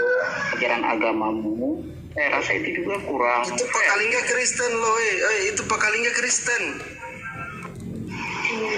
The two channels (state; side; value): identical; both; correlation 1.00